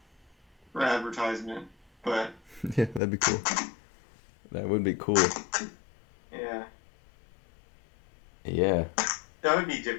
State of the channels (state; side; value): drops out; right; at 3.0 s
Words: for advertisement. But yeah, that'd be cool. That would be cool. Yeah. Yeah. That would be